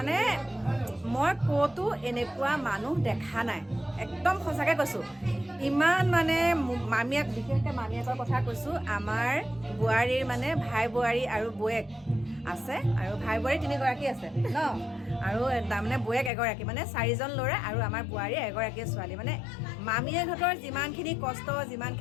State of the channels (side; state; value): right; drops out; at 16.3 s